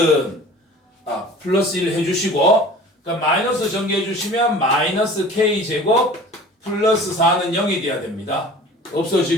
플러스 1 해주시고 그러니까 마이너스 전개해 주시면 마이너스 k제곱 플러스 4는 0이 돼야 됩니다.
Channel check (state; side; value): normal; both; correlation 0.43